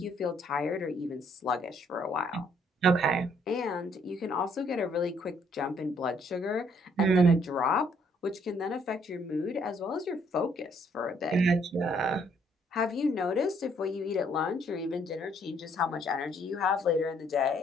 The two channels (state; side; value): normal; both; correlation 0.66